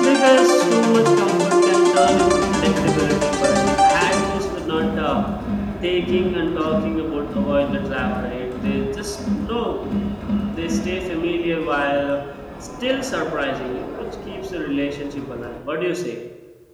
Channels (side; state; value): both; identical; correlation 1.00